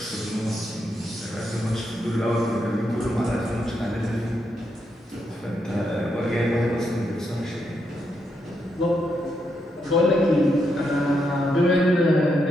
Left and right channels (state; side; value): normal; both; correlation 0.81